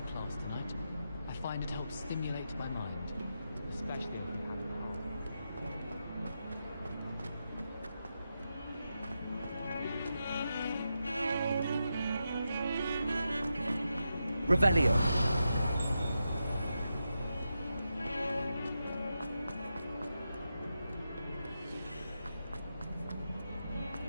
class tonight. I find it helps stimulate my mind, especially when you have Revelio.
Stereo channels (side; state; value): both; inverted; correlation -0.87